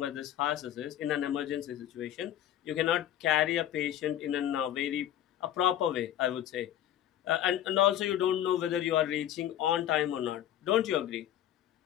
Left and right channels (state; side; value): quieter; right; 11.5 dB